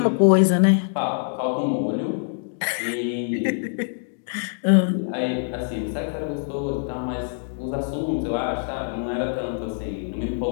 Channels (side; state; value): right; silent; digital silence